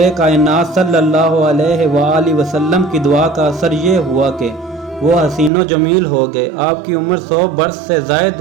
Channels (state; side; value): drops out; left; at 5.5 s